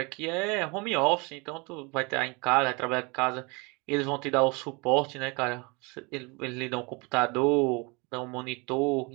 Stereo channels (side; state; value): left; quieter; 28.7 dB